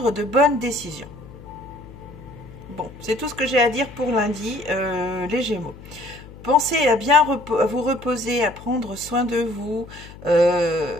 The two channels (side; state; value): left; noise; hum, 17 dB below the sound